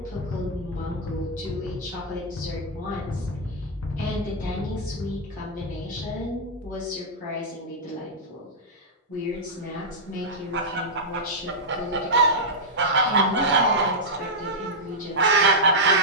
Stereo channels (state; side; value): normal; both; correlation -0.07